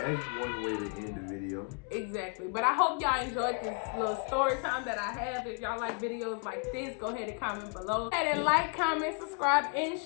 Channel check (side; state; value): right; quieter; 37.0 dB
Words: one way to end the video. Exactly. But I hope y'all enjoyed this little story time that I have. If y'all like videos like this, go ahead and comment below. Go ahead and like, comment, subscribe, and